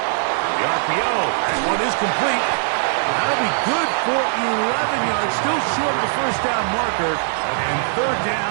The RPO. That one is complete. That'll be good for 11 yards. Still short of the first down marker. And third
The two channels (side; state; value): left; silent; 64 dB below the other